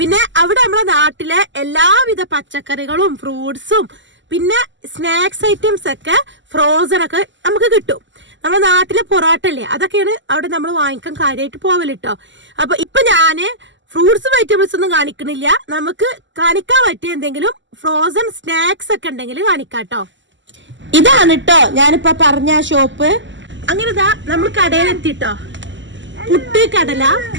അവിടെ നമ്മുടെ നാട്ടിലെ എല്ലാവിധ പച്ചക്കറികളും ഫ്രൂട്ട്സും പിന്നെ സ്നാക്സ് ഐറ്റംസ് ഒക്കെ ഫ്രോസൺ ഒക്കെ നമുക്ക് കിട്ടും. നമ്മുടെ നാട്ടിലെ പൊറോട്ട അല്ലേ, അതൊക്കെയാണ് അവിടെ നമ്മൾ വാങ്ങിക്കാൻ കാര്യമായിട്ട് പോവലിട്ടോ. അപ്പൊ ഇപ്പൊ ഞാന് ഫ്രൂട്ട്സും വെജിറ്റബിൾസ് ഒന്നും കാണിക്കണില്ല. നമുക്ക് കാണിക്കാൻ പറ്റിയ എന്തെങ്കിലും ഫ്രോസൺ സ്നാക്സ് ഒക്കെ ഉണ്ടെങ്കിൽ കാണിക്കാട്ടോ. ഇതാണ് കേട്ടോ ഞാനിപ്പോ പറഞ്ഞ ഷോപ്പ്. അങ്ങനെ ഇതാ നമ്മൾ കടയിലെത്തിട്ടോ. പുട്ട്, കടല,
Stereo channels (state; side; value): late; left; 0.54 ms